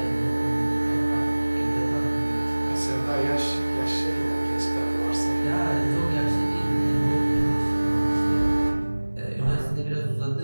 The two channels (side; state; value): both; inverted; correlation -1.00